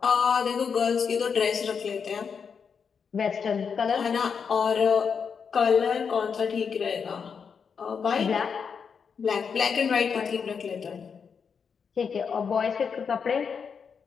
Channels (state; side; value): quieter; right; 6.3 dB